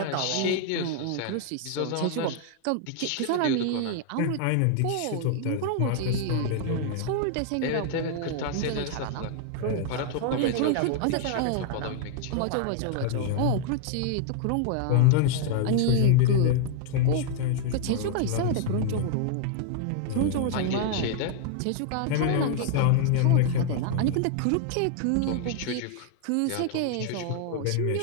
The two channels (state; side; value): different; both; correlation 0.00